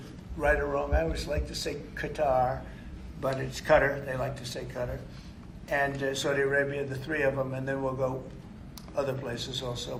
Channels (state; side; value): identical; both; correlation 1.00